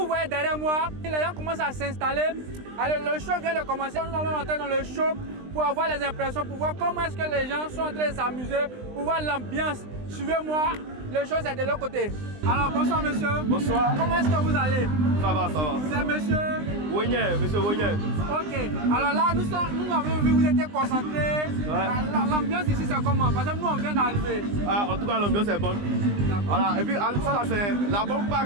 voyez derrière moi, les gens commencent à s'installer. Alors le show vient de commencer. Nous allons entrer dans le show pour avoir les impressions, pour voir comment est-ce que les gens sont en train de s'amuser, pour voir l'ambiance. Suivez-moi, le show c'est de l'autre côté. Alors bonsoir monsieur. Bonsoir. Comment est-ce que vous allez? Ça va, ça va. Vous êtes monsieur? Wogné, monsieur Wogné. Ok. Alors là, nous avons vu, vous étiez concentrés. Ouais. L'ambiance ici c'est comment? Parce que nous on vient d'arriver. Ah, en tout cas, l'ambiance est bonne. Voilà. Et puis, ça là, c'est la bonne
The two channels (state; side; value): late; left; 20 ms